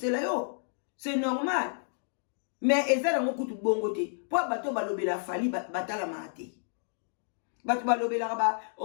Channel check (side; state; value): right; silent; digital silence